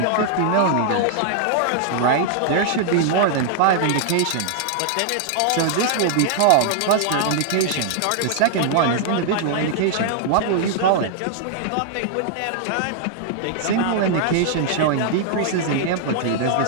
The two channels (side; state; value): both; different; correlation -0.01